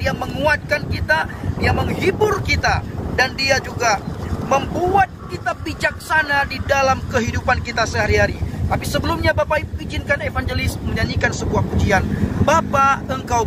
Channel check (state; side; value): identical; both; correlation 1.00